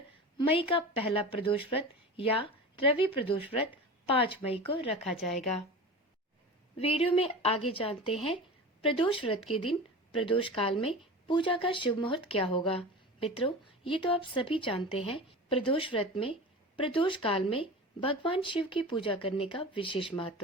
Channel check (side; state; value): both; normal; correlation 0.32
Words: मई का पहला प्रदोष व्रत या रवि प्रदोष व्रत 5 मई को रखा जाएगा। वीडियो में आगे जानते हैं प्रदोष व्रत के दिन प्रदोष काल में पूजा का शुभ मुहूर्त क्या होगा। मित्रों, ये तो आप सभी जानते हैं, प्रदोष व्रत में प्रदोष काल में भगवान शिव की पूजा करने का विशेष